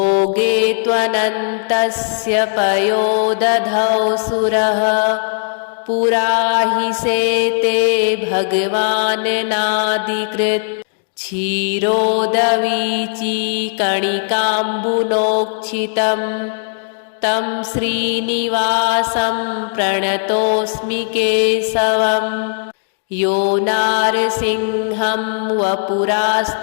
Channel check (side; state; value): right; silent; digital silence